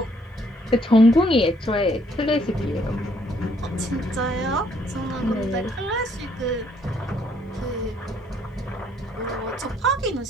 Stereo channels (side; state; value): both; normal; correlation 0.67